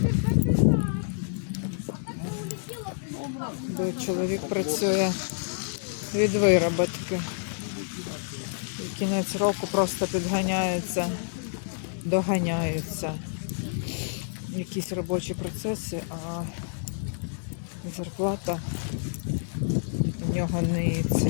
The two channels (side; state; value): right; silent; 59 dB below the other